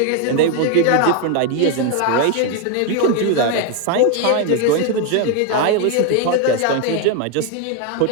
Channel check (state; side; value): different; both; correlation 0.01